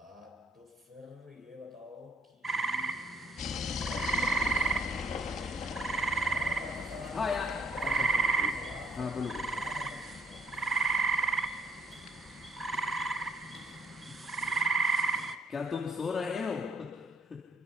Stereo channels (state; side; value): normal; both; correlation 0.67